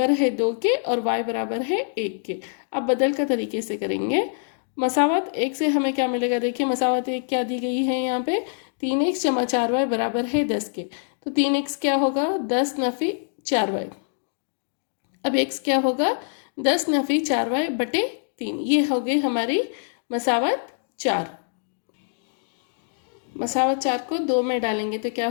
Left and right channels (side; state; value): right; silent; digital silence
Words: है 2 के और y बराबर है 1 के। अब बदल का तरीके से करेंगे, मसावत 1 से हमें क्या मिलेगा, देखिए मसावत 1 क्या दी गई है यहाँ पे 3x जमा 4y बराबर है 10 के, तो 3x क्या होगा 10 नफी 4y। अब x क्या होगा 10 नफी 4y बटे 3, ये हो गई हमारी मसावत 4। मसावत 4 को 2 में डालेंगे तो क्या